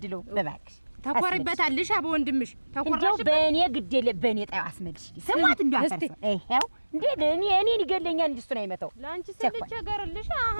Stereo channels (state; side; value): inverted; both; correlation -1.00